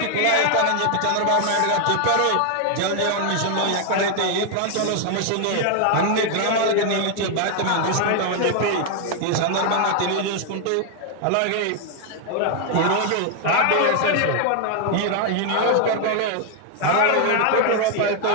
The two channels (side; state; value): both; different; correlation 0.00